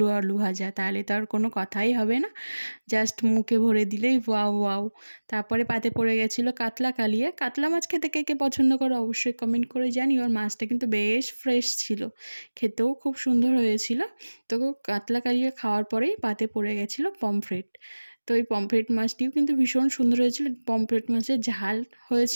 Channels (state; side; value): inverted; both; correlation -1.00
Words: আলু ভাজা, তাহলে তো আর কোনো কথাই হবে না। জাস্ট মুখে ভরে দিলেই ওয়াও ওয়াও। তারপরে পাতে পড়ে গেছিলো কাতলা কালিয়া। কাতলা মাছ খেতে কে কে পছন্দ করো অবশ্যই কমেন্ট করে জানিও। আর মাছটা কিন্তু বেশ ফ্রেশ ছিল, খেতেও খুব সুন্দর হয়েছিল। তো কাতলা কালিয়া খাওয়ার পরেই পাতে পড়ে গেছিলো পমফ্রেট। তো এই পমফ্রেট মাছটিও কিন্তু ভীষণ সুন্দর হয়েছিল। পমফ্রেট মাছের ঝাল